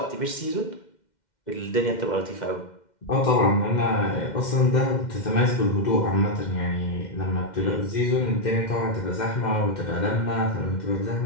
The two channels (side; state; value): right; late; 2.1 ms